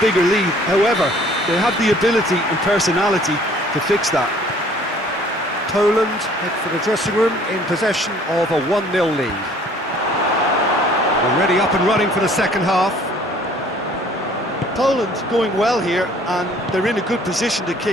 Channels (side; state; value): both; normal; correlation 0.55